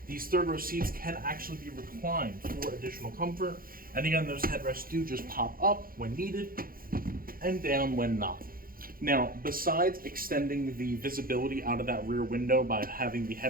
These third row seats can actually be reclined for additional comfort. And again, those headrests do just pop up when needed and down when not. Now, besides extending the visibility out of that rear window by having the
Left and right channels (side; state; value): left; late; 0.42 ms